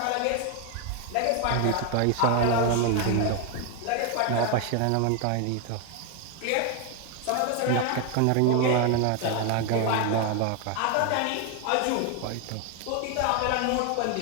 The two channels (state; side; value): different; both; correlation 0.01